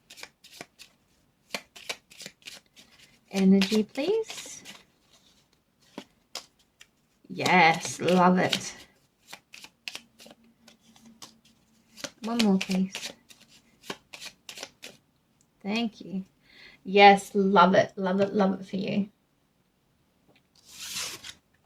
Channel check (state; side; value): identical; both; correlation 1.00